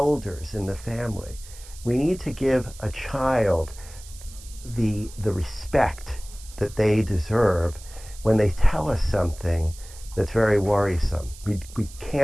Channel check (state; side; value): noise; right; hiss, 19 dB below the sound